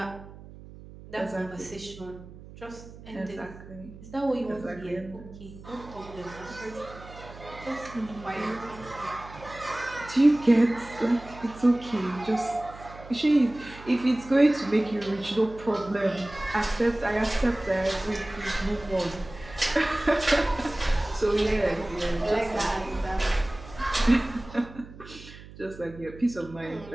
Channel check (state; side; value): noise; right; hum, 17 dB below the sound